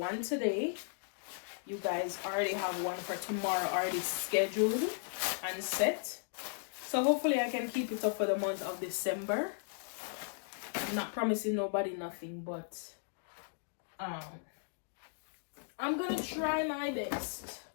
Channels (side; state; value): right; silent; digital silence